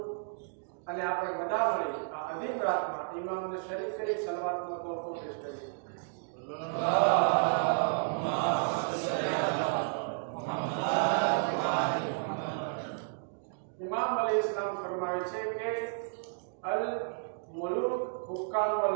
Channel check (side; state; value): left; silent; digital silence